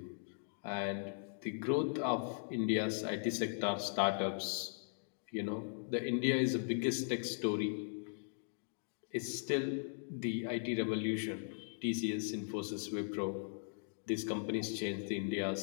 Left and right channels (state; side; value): silent; right; digital silence